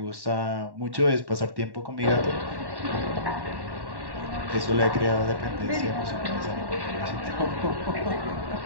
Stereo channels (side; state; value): left; late; 1.1 ms